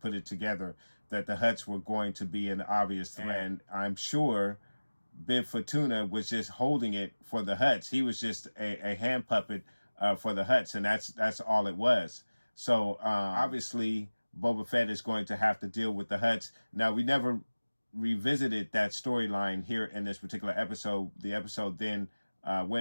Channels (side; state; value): both; inverted; correlation -1.00